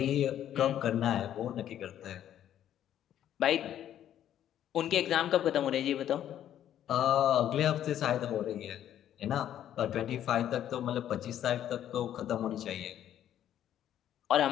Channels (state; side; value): quieter; right; 11.0 dB